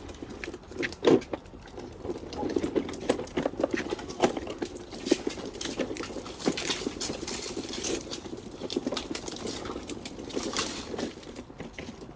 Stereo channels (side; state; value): both; identical; correlation 1.00